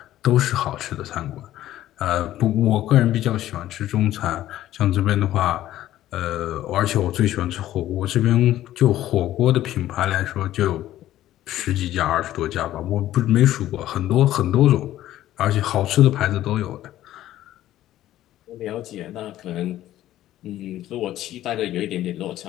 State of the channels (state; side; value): quieter; right; 13.6 dB